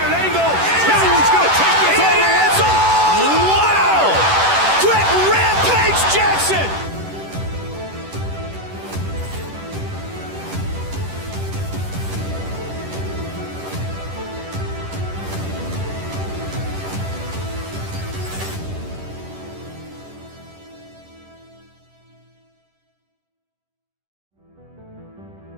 an angle. He's going to take this all the way. Wow. Quick Rampage Jackson.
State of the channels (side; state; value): left; late; 10 ms